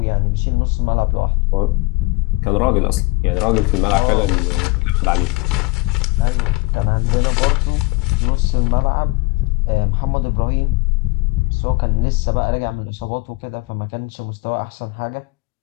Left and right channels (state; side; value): quieter; right; 24.5 dB